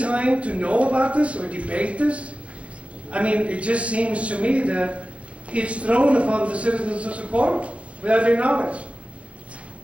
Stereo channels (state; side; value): late; left; 0.062 ms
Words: to know about this or debate this? I mean, it just seems to me that it's thrown upon the citizens of Socorro without their knowledge.